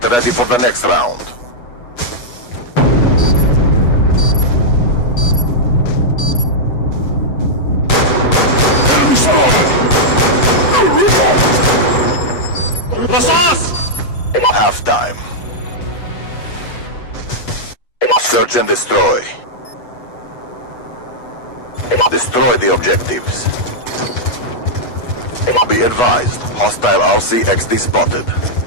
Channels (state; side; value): late; right; 8.3 ms